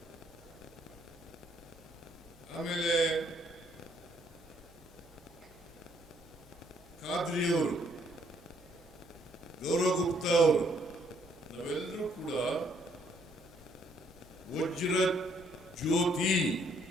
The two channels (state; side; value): noise; left; hum, 24 dB below the sound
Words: ಆಮೇಲೆ ಖಾದ್ರಿಯವರು, ಗೌರವ್ ಗುಪ್ತಾ ಅವರು, ನಾವೆಲ್ಲರೂ ಕೂಡ ವಜ್ರ